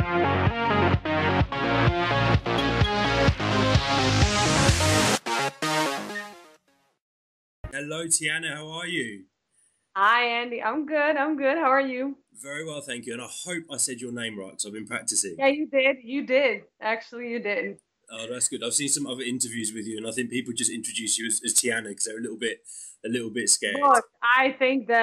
Hello Tijana, how are you? Hi, Andy. I'm good. I'm good. How are you? Very well, thank you, and I hope I said your name right because I've been practicing. Yeah, you did. You did. Actually, you did. Oh, that's good. I've seen some other interviews with you, and I think people just introduce you as Tijana because they're a little bit scared. Look, I think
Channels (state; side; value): identical; both; correlation 1.00